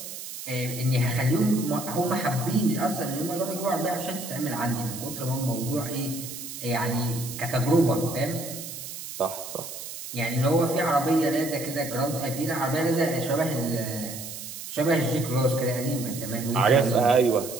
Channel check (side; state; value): right; noise; hiss, 10 dB below the sound